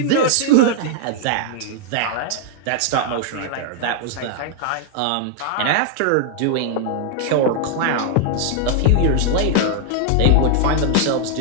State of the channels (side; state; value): both; different; correlation 0.00